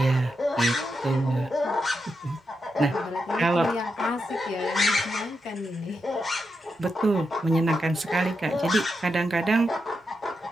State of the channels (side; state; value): both; normal; correlation 0.86